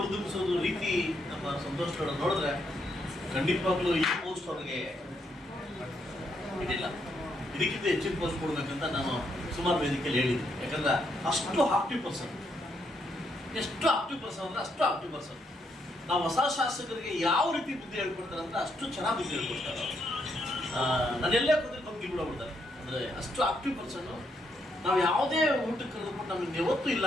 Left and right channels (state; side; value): normal; both; correlation 0.76